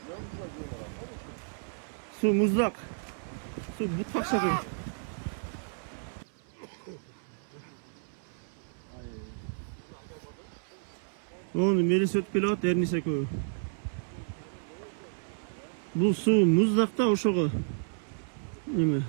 Su muzlak. Su bu takşakı. Onu beri söt pilot ernise koy. Bu su muzlakta oşoğu. Neme?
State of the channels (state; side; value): silent; left; 57 dB below the other